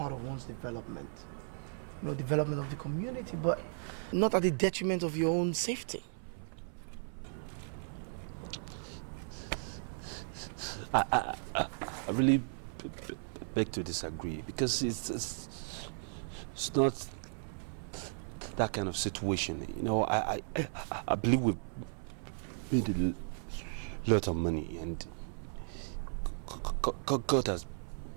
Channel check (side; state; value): left; silent; 54 dB below the other